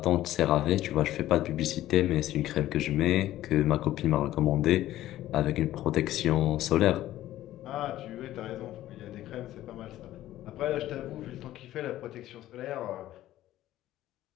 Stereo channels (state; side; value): quieter; right; 14.1 dB